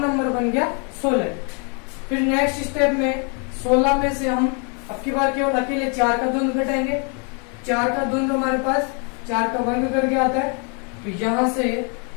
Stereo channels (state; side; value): quieter; right; 36.7 dB